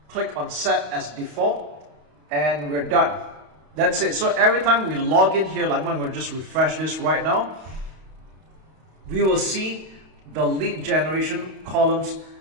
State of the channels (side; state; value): left; late; 31 ms